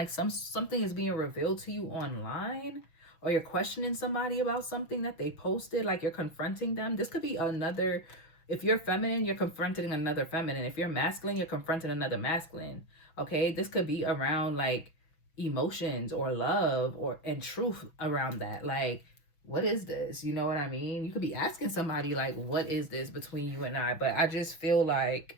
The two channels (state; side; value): late; right; 6.1 ms